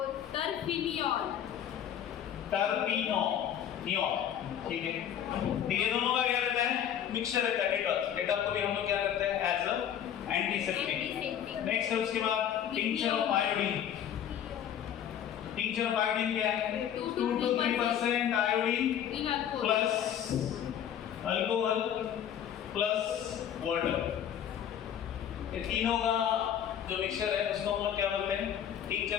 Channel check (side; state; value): right; quieter; 9.6 dB